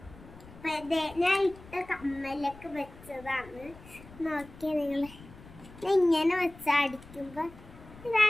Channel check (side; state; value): left; noise; rumble, 20 dB below the sound